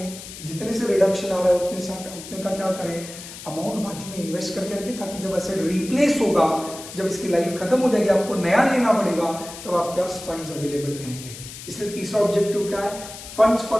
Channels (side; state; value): left; noise; hiss, 13 dB below the sound